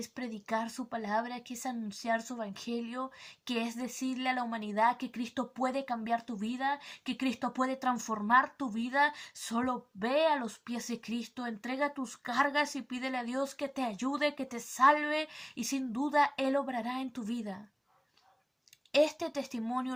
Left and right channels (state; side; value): identical; both; correlation 1.00